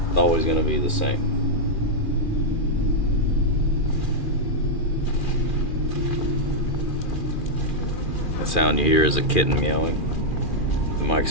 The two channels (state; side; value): late; right; 2.4 ms